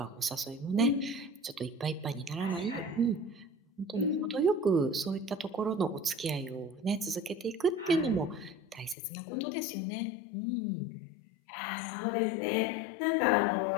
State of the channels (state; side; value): drops out; right; at 9.0 s